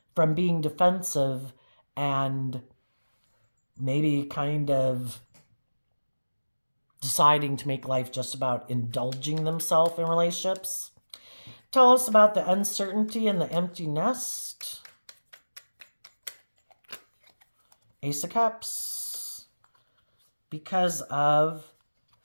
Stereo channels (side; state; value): both; inverted; correlation -1.00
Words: from being defensive and maybe kind of deciding to make life just about indulging themselves in relationships. Tell us about the uncertainty and the empty nest. Ace of Cups. Because of